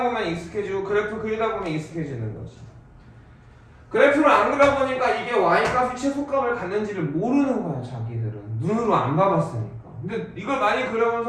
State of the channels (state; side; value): identical; both; correlation 1.00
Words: 보면 익숙해지고 그래프 그리다 보면 익숙해지는 거지. 그래프를 안 그려보니까 이게 y값이 최소값을 갖는지를 모르는 거야 자기들은. 눈으로 안 봐봤으니까. 근데 이걸 많이 그려본